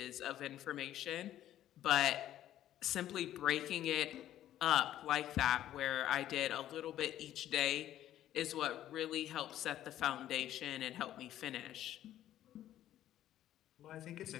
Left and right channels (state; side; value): quieter; right; 12.4 dB